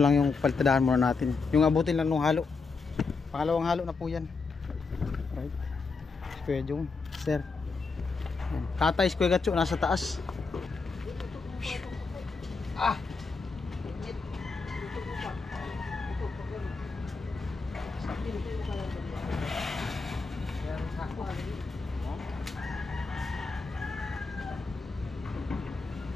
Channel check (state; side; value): quieter; right; 4.4 dB